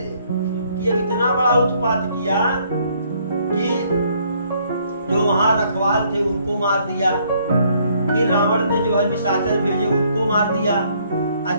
कि अब इतना बड़ा उत्पात किया कि जो वहां रखवाल थे उनको मार दिया, फिर रावण ने जो है निशाचर भेजे उनको मार दिया,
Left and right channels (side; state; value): both; inverted; correlation -0.66